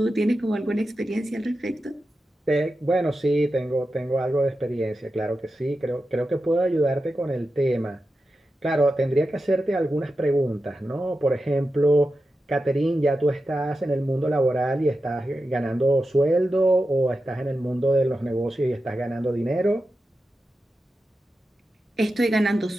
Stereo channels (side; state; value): both; normal; correlation 0.91